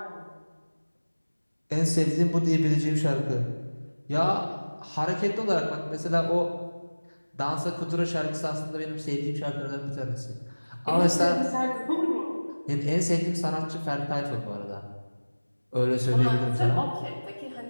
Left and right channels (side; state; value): both; inverted; correlation -1.00